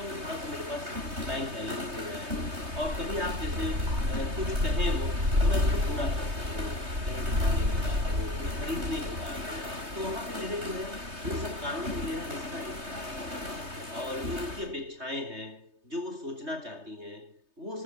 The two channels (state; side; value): late; left; 3.2 ms